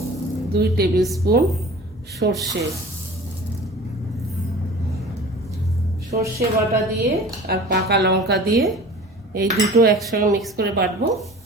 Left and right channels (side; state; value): both; normal; correlation 0.42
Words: 2 টেবিল স্পুন সর্ষে বাটা দিয়ে আর পাকা লঙ্কা দিয়ে এই দুটো একসঙ্গে মিক্স করে বাটবো,